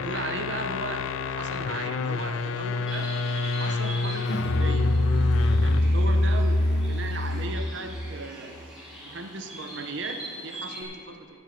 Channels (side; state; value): both; normal; correlation 0.76